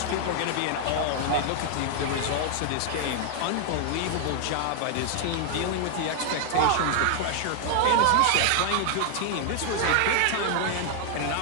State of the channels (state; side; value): different; both; correlation 0.00